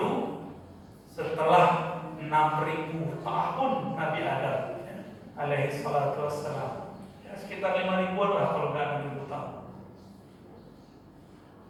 setelah 6.000 tahun Nabi Adam alaihi salatu wassalam. Ya, sekitar 5.000-an lah kalau nggak 6.000 tahun.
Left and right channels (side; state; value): both; identical; correlation 1.00